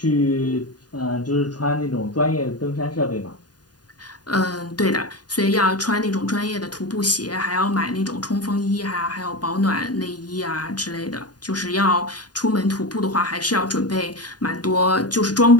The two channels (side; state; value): right; late; 0.69 ms